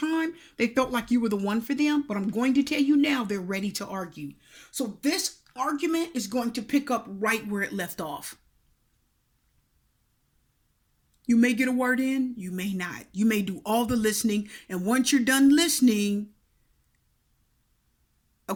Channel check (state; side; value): identical; both; correlation 1.00